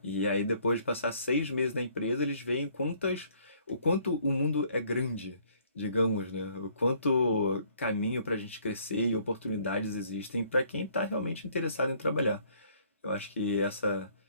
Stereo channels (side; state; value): both; inverted; correlation -0.62